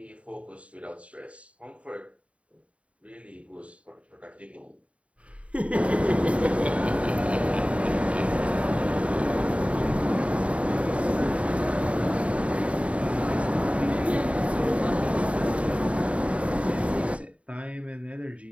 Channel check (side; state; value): left; late; 0.063 ms